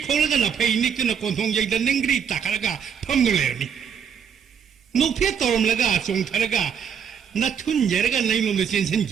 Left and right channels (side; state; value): left; quieter; 7.6 dB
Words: ꯈꯣꯡꯂꯒ ꯅꯐꯩ ꯅꯤꯛꯇꯨꯅ ꯀꯣꯟꯊꯣꯡꯖꯩꯗ ꯅꯤꯡꯒ꯭ꯔꯤ ꯇꯥꯈꯠꯂꯒ ꯐꯝꯗꯨꯅ ꯂꯩꯔꯝꯃꯤ ꯅꯣꯛꯐꯦꯠ ꯇꯧꯔꯝꯂꯒ ꯆꯣꯡꯊꯔꯒ ꯅꯊꯨꯟꯖꯔꯒ ꯅꯩꯂꯣꯝꯗ